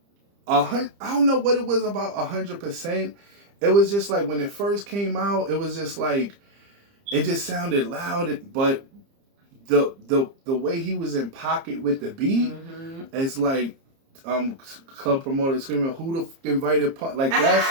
I don't know what it was about 100%. It was just like when it first came out, it was just like, it just sounded loud. But the way he was in pocket with the beat, it's like club promoter screaming, "Who the f*** invited Punk?" Like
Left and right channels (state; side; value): late; left; 30 ms